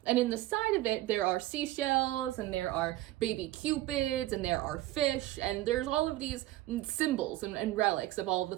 and in the side of it, there are seashells, and there are baby cupids, and there are fish, and there's all of these symbols and relics of all of the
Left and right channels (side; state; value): left; quieter; 16.1 dB